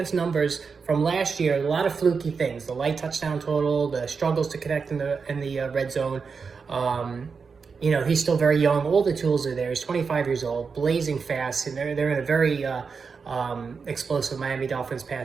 numbers from last year, a lot of fluky things: the light touchdown total, the struggles to connect in the red zone. He's still very young. All the tools are there. He's 25 years old, blazing fast, and they're in a very explosive Miami Dolphins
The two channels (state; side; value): quieter; left; 5.3 dB